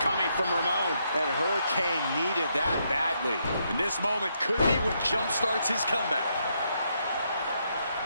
coming from Ramon. And Hurricane needed that badly. And this moment could be what jumpstarts his comeback.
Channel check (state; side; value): inverted; both; correlation -0.77